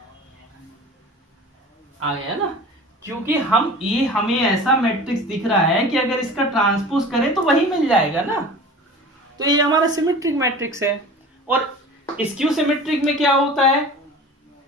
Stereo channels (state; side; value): normal; both; correlation 0.39